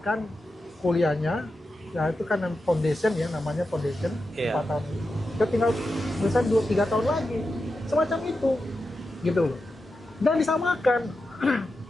kuliahnya. Ya itu kan foundation ya, namanya foundation 4 tahun. Dia tinggal selesai 2-3 tahun lagi. Semacam itu, gitu loh. Dan disamakan.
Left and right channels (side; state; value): both; normal; correlation 0.90